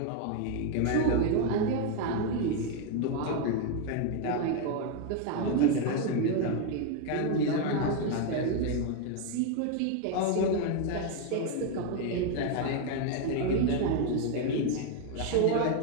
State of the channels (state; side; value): different; both; correlation 0.01